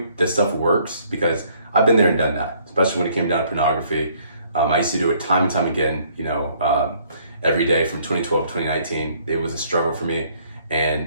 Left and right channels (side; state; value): both; inverted; correlation -0.63